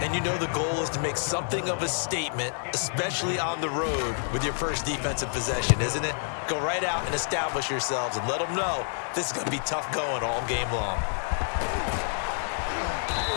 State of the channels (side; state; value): right; silent; 58 dB below the other